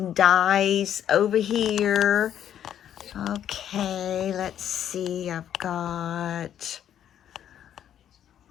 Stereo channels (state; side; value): quieter; right; 10.1 dB